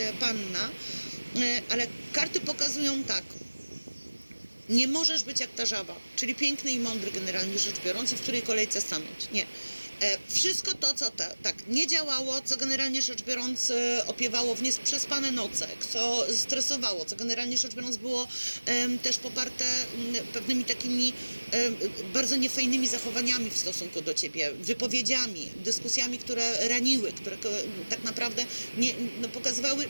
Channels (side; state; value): both; inverted; correlation -1.00